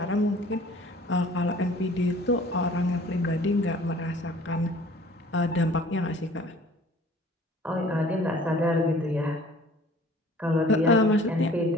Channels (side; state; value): both; normal; correlation 0.51